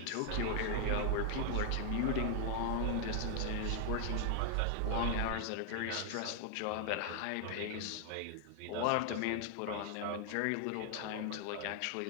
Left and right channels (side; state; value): both; different; correlation 0.00